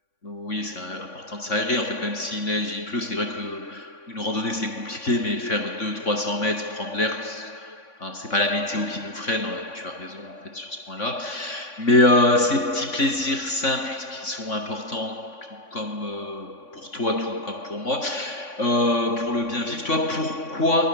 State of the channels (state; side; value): late; right; 3.6 ms